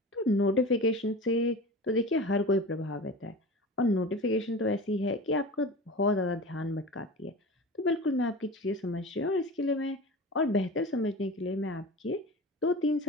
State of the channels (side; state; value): both; normal; correlation 0.33